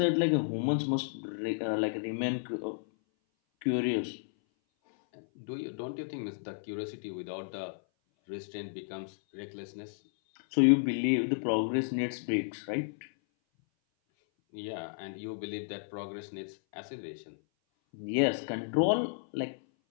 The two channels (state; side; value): silent; right; 56 dB below the other